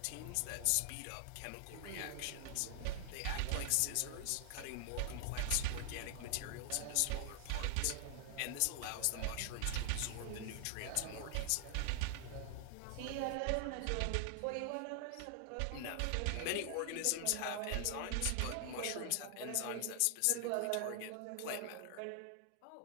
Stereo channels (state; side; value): different; both; correlation 0.00